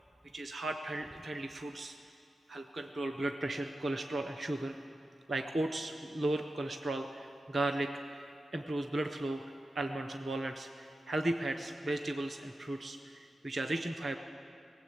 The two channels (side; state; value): both; normal; correlation 0.92